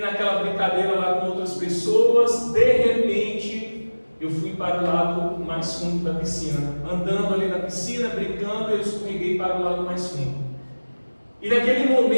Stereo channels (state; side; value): inverted; both; correlation -1.00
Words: brincadeira lá com outras pessoas, de repente eu fui para o lado mais fundo da piscina. Andando ali na piscina, brincando, eu escorreguei para o lado mais fundo. E naquele